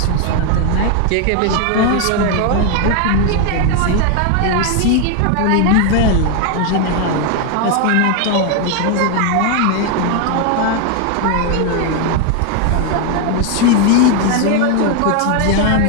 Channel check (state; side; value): different; both; correlation 0.01